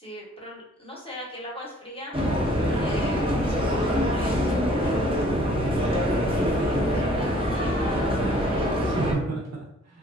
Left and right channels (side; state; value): both; normal; correlation 0.57